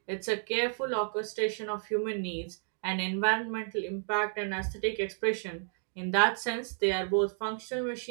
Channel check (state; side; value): silent; left; 57 dB below the other